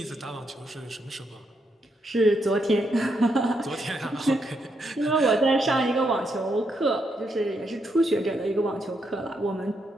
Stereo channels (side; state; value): both; normal; correlation 0.79